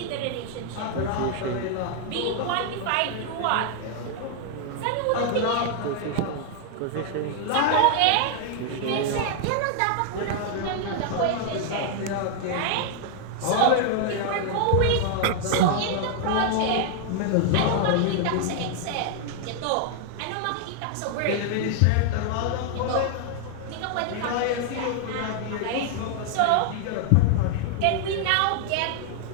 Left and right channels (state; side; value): different; both; correlation 0.00